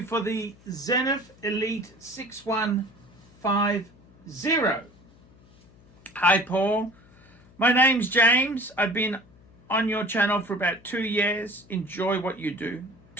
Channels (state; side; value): noise; left; hum, 27 dB below the sound